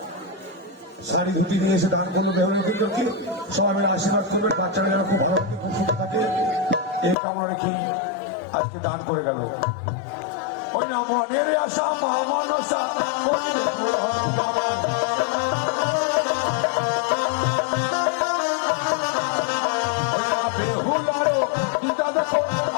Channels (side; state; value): right; drops out; at 7.2 s